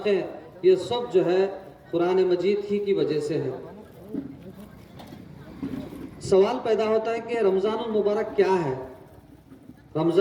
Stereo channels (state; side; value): identical; both; correlation 1.00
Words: ये सब जो है कुरान मजीद ही की वजह से है। सवाल पैदा होता है कि रमज़ानुल मुबारक क्या है।